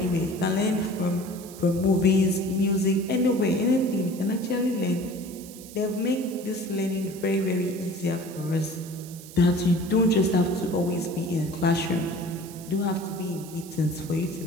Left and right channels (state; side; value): noise; right; hiss, 17 dB below the sound